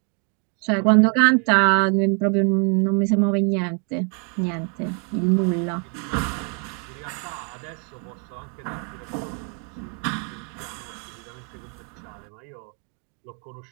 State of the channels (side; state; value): left; quieter; 36.3 dB